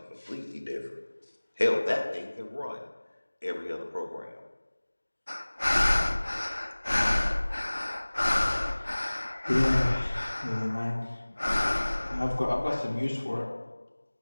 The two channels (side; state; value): both; inverted; correlation -1.00